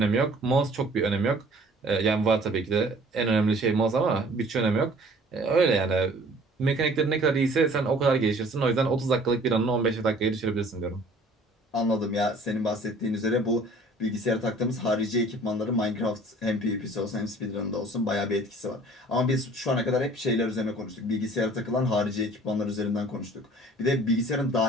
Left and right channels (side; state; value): both; normal; correlation 0.52